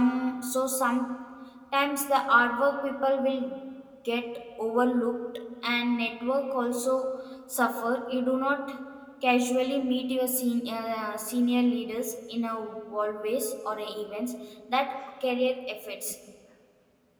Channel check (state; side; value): identical; both; correlation 1.00